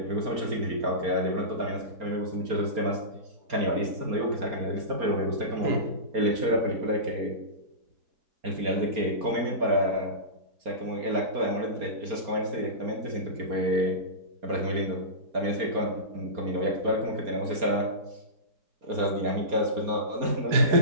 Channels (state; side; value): late; left; 4.3 ms